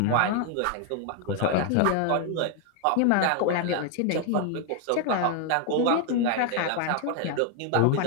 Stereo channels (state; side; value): different; both; correlation 0.00